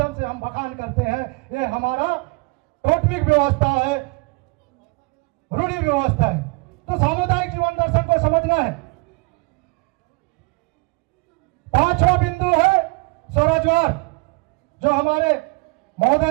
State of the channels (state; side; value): quieter; left; 29.0 dB